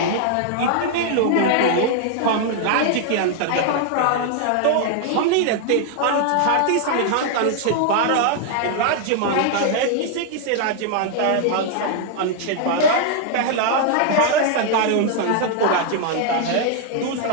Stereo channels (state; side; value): different; both; correlation 0.00